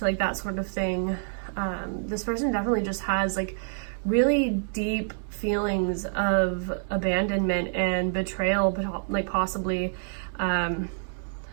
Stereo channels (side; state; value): left; silent; digital silence